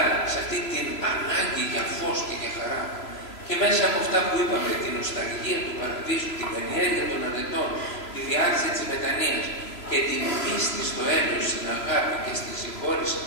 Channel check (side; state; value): right; late; 3.0 ms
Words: σε αυτή την ανάγκη για φως και για χαρά, και μέσα από αυτά που είπαμε, την νοσταλγία του παραδείσου, την καλλιέργεια των αρετών, τη διάρκεια της μετανοίας και την πίστη στο έλεος, στην αγάπη και στη συγχώρηση